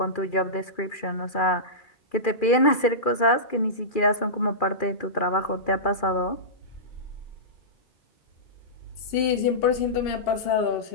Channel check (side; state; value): right; late; 2.4 ms